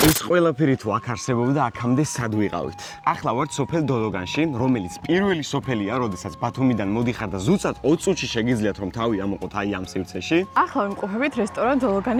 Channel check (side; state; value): both; identical; correlation 1.00